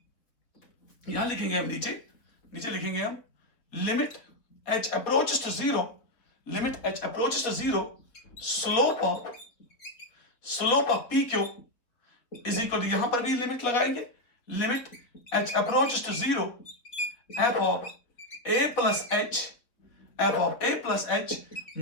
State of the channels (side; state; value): right; late; 3.8 ms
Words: यहां लिखेंगे हम नीचे लिखेंगे हम limit h approaches to 0, limit h approaches to 0 slope of P Q is equal to, यहां पर भी लिमिट लगाएंगे, limit h approaches to 0 f of a plus h